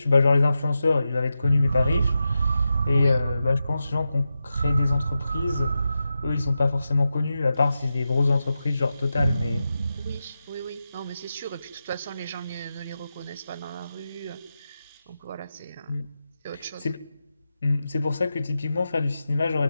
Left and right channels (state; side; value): inverted; both; correlation -0.90